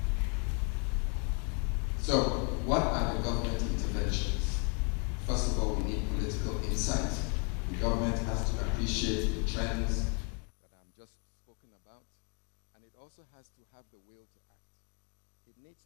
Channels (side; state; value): right; quieter; 37.4 dB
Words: So, what are the government interventions? First of all, we need political insight. The government has to appreciate the trends that I'm just spoken about, and it also has to have the will to act. It needs